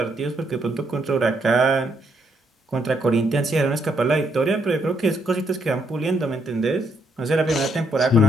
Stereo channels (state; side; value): normal; both; correlation 0.74